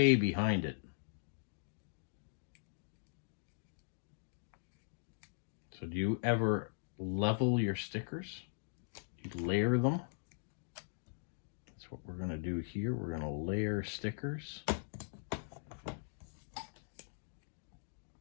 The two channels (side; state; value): right; silent; digital silence